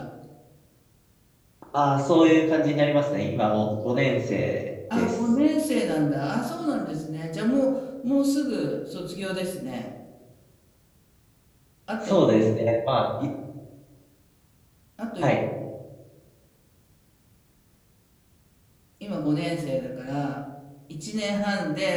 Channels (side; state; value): both; identical; correlation 1.00